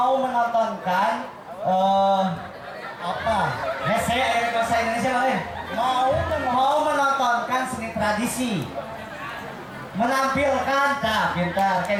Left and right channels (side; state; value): both; identical; correlation 1.00